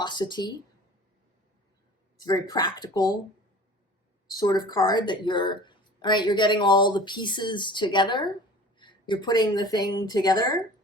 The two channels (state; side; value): normal; both; correlation 0.42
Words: It's a very practical sort of card that you're, all right, you're getting all the pieces together. You're putting the thing together